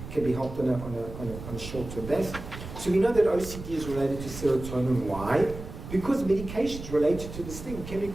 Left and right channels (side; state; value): right; noise; rumble, 11 dB below the sound